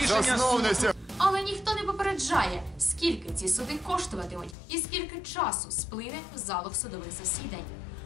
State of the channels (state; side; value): drops out; right; at 4.5 s